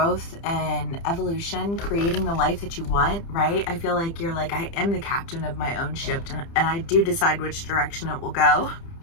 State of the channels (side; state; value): right; late; 30 ms